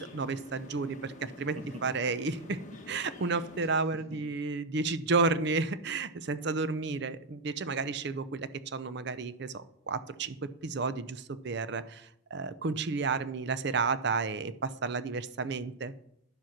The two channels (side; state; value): left; quieter; 3.6 dB